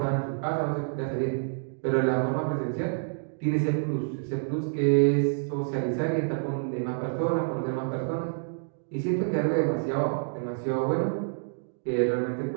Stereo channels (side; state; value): left; silent; digital silence